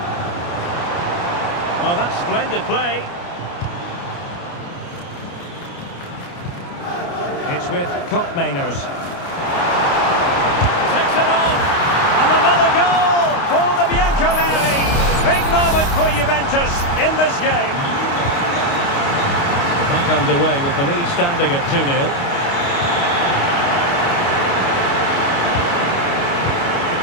Oh, that's splendid play. It's with Koopmeiners. Takes it on. And another goal for the Bianconeri. Big moment for Juventus in this game. We're back underway with the lead standing at 2-0.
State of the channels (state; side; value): late; right; 29 ms